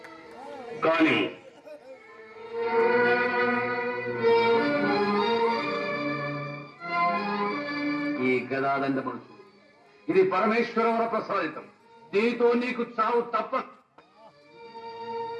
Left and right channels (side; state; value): both; identical; correlation 1.00